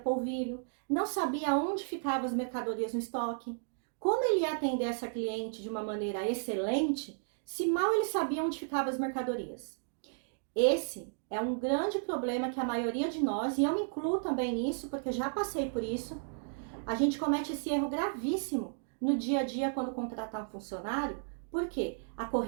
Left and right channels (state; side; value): silent; left; digital silence